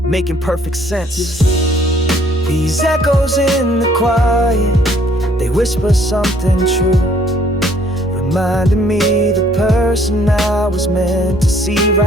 making perfect sense. These echoes in the quiet, they whisper something true, reminding me the person I was meant to see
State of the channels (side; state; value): both; normal; correlation 0.62